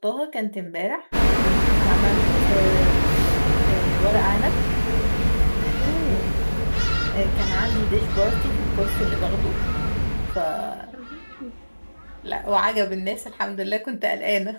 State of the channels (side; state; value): both; inverted; correlation -1.00